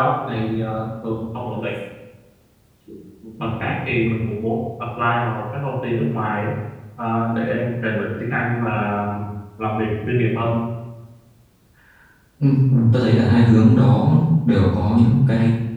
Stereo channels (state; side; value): identical; both; correlation 1.00